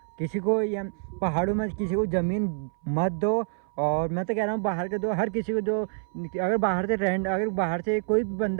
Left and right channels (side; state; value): left; silent; 60 dB below the other